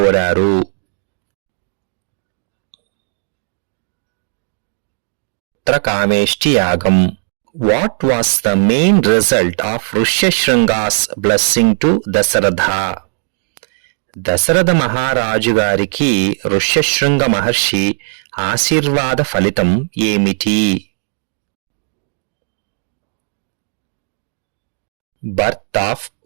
పుత్రకామేష్టి యాగం. What was the main result of Rishyasringa's blessing to Dasharatha? Dasharatha మహారాజు గారికి ఋష్యశృంగ మహర్షి ఆశీర్వాద ఫలితం ఏమిటి? Birth of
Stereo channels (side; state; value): left; silent; digital silence